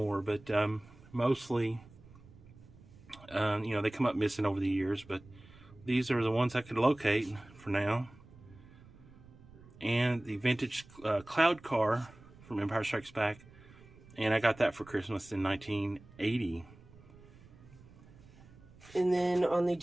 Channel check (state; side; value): noise; right; rumble, 22 dB below the sound